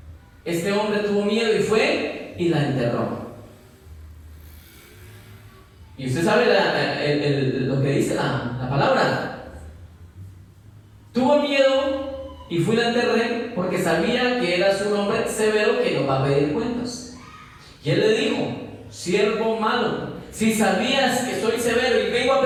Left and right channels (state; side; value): identical; both; correlation 1.00